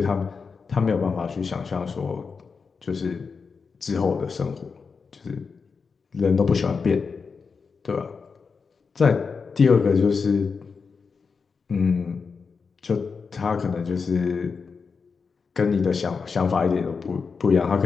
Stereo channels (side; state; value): right; quieter; 5.2 dB